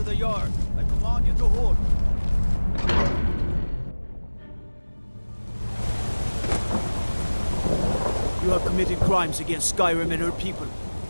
yard. I command you to hold. You have committed crimes against Skyrim and her people.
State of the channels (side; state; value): both; inverted; correlation -1.00